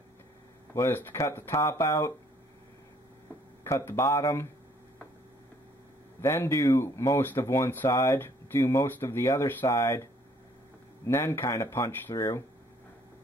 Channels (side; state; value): both; normal; correlation 0.62